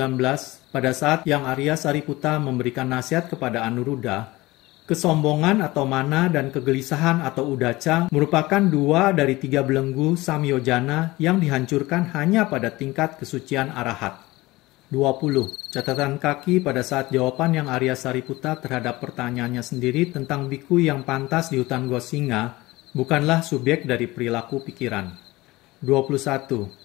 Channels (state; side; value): quieter; right; 20.0 dB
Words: Pada saat yang Arya Sariputta memberikan nasihat kepada Anuruddha, kesombongan atau mana dan kegelisahan atau udaca merupakan 2 dari 3 belenggu samyojana yang dihancurkan hanya pada tingkat kesucian arahat. 20. Catatan kaki pada saat jawaban yang Arya Sariputta terhadap pertanyaannya sendiri tentang biku yang pantas di hutan Gosinga bukanlah subjek dari perilaku pikiran.